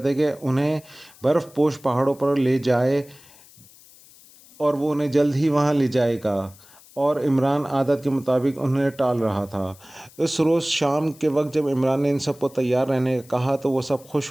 کہ انہیں برف پوش پہاڑوں پر لے جائے اور وہ انہیں جلد ہی وہاں لے جائے گا، اور عمران عادت کے مطابق انہیں ٹال رہا تھا۔ اس روز شام کے وقت جب عمران نے ان سب کو تیار رہنے کا کہا تو وہ سب خوش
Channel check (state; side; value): noise; left; hiss, 24 dB below the sound